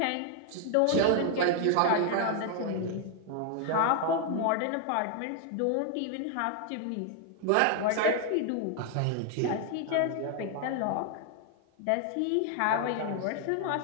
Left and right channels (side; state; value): both; different; correlation 0.00